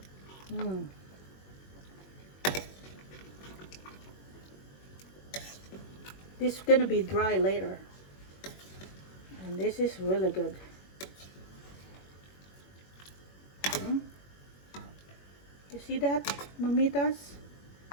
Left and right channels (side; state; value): right; late; 21 ms